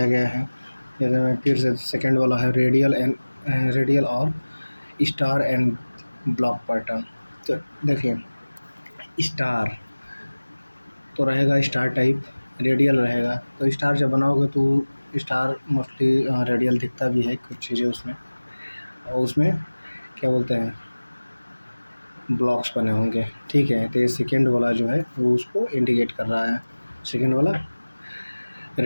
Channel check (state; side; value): inverted; both; correlation -1.00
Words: गया है। जैसे मैं फिर से सेकंड वाला है रेडियल और स्टार एंड ब्लॉक पैटर्न। तो देखिए स्टार तो रहेगा, स्टार टाइप रेडियल रहेगा। तो स्टार जब बनाओगे तो स्टार मोस्टली रेडियल दिखता भी है कुछ चीज़ें उसमें, और उसमें क्या बोलते हैं ब्लॉक्स बने होंगे। ठीक है, तो ये सेकेंड वाला जो है वो उसको इंडिकेट कर रहा है, सेकेंड वाला